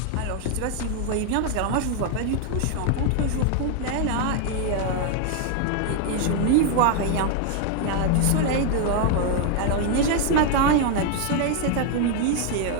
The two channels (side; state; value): both; different; correlation 0.00